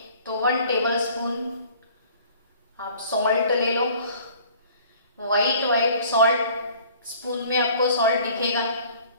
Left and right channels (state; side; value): inverted; both; correlation -0.51